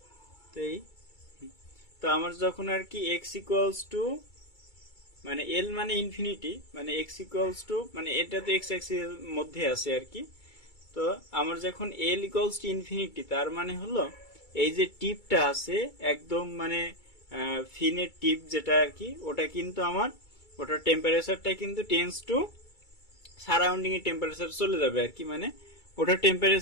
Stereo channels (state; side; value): late; right; 2.3 ms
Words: তো এই তো আমার যখন আর কি এক্স ইকুয়ালস টু মানে এল মানে ইনফিনিটি, মানে এক্স ইকুয়ালস টু মানে এটা তো এক্স অ্যাক্সিস এর মধ্যে আছে আর কি। তো আমার যখন এল ইকুয়ালস টু ইনফিনিটি, তার মানে হলো এই যে টিপটা আছে একদম মানে ফিনের টিপ যেটা আর কি, ওটা কিন্তু আমার ওটার টেম্পারেচারটা কিন্তু টেন্স টু সারাউন্ডিং এর টেম্পারেচার চলে যাবে আর কি, মানে ওটার